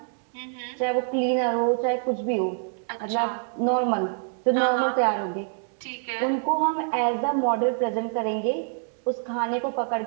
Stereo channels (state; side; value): silent; left; 61 dB below the other